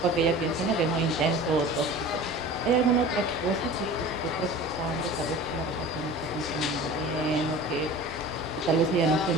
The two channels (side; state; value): both; normal; correlation 0.39